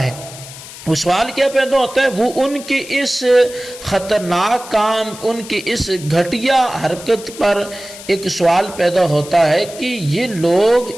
ہے۔ وہ سوال کیا پیدا ہوتا ہے؟ وہ ان کے اس خطرناک کام، ان کے اس گھٹیا حرکت پر ایک سوال پیدا ہوتا ہے کہ یہ لوگ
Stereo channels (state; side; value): noise; left; hiss, 15 dB below the sound